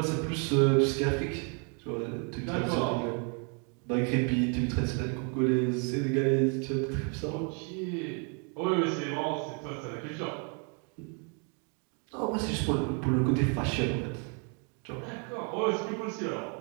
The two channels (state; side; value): quieter; left; 38.0 dB